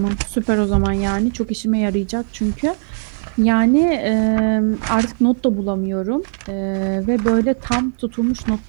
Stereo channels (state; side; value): silent; left; 62 dB below the other